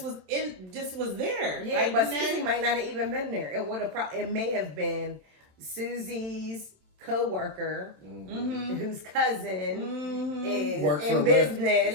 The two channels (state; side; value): late; left; 27 ms